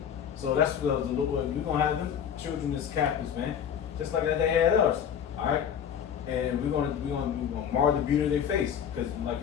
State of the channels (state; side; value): quieter; right; 8.4 dB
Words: So that's what we're gonna have them children as captives, man, just like they had us. All right, and we're gonna mar the beauty of their face, because like I